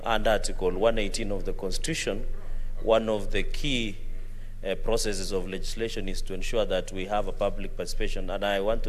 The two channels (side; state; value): both; identical; correlation 1.00